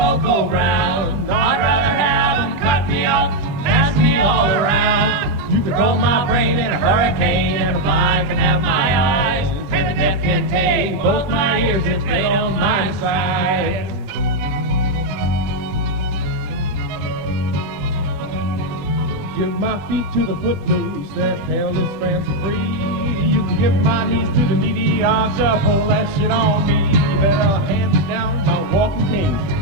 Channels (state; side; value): late; left; 21 ms